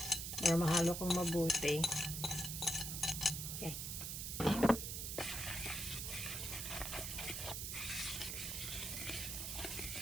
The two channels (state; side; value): noise; right; hiss, 4 dB below the sound